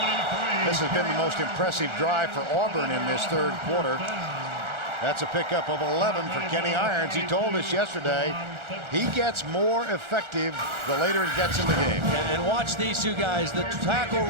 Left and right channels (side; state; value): left; late; 1.4 ms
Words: This has been the most impressive drive for Auburn in this third quarter. That's a pickup of 11 for Kenny Irons. He told us yesterday he gets more effective the later it gets in the game. And watch these two guys, the tackle